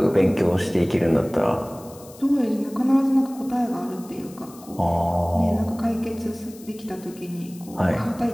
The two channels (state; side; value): noise; left; hiss, 21 dB below the sound